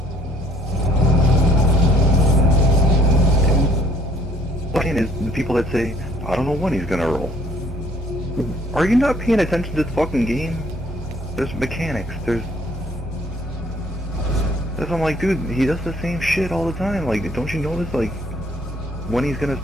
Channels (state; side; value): normal; both; correlation 0.61